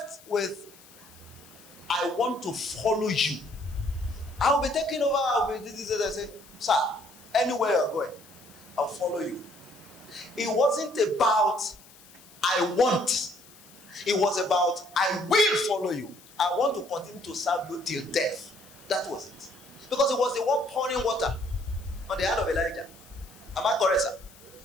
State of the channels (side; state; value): left; noise; hiss, 23 dB below the sound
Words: with, I want to follow you. I will be taking over. I will be this. I say, sir, anywhere you're going, I'll follow you. It wasn't about I want. It was about I will follow you. I want to continue to serve you till death. That was it. Because it was the one pouring water on the hand of Elijah. Am I correct, sir?